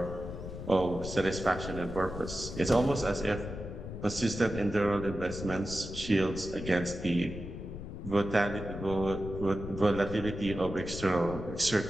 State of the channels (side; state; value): left; noise; rumble, 9 dB below the sound